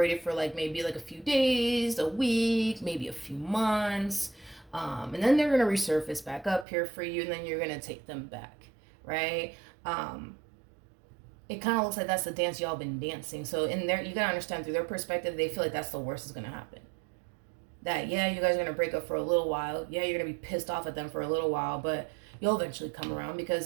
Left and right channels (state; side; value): drops out; left; at 6.7 s